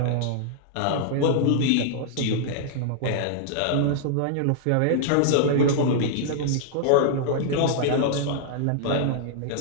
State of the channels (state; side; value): different; both; correlation -0.01